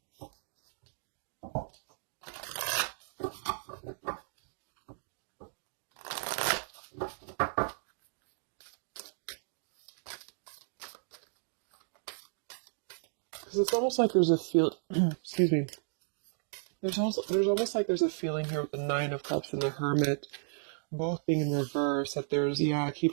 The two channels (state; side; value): silent; left; digital silence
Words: Because it's almost like there's a excuse me. There's almost like there's a feeling here with the Nine of Cups and the Hermit both being in reverse, that I